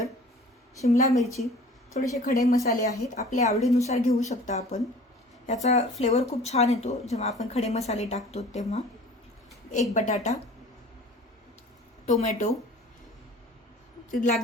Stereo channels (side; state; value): both; normal; correlation 0.46